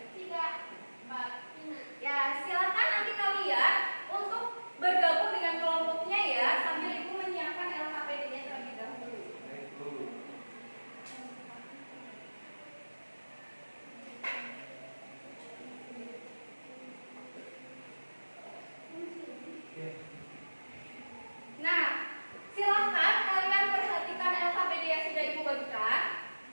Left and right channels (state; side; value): inverted; both; correlation -1.00